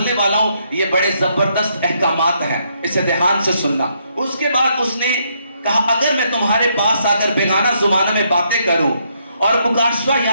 वाला हूं ये बड़े जबरदस्त अहकामात हैं, इसे ध्यान से सुनना। उसके बाद उसने कहा अगर मैं तुम्हारे पास आकर बेगाना जुबानों में बातें करूं और मुकाशवा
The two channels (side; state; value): both; inverted; correlation -0.74